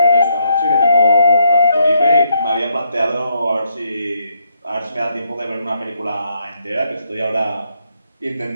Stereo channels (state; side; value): inverted; both; correlation -0.75